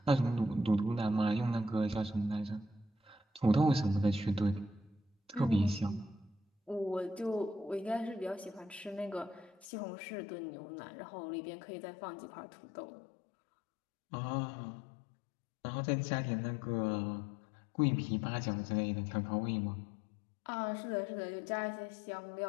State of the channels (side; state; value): right; drops out; at 9.7 s